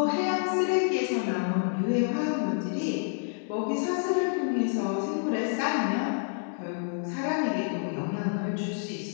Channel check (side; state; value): right; silent; 59 dB below the other